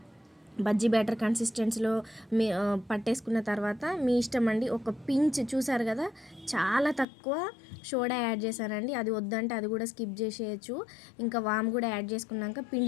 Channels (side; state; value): right; drops out; at 7.1 s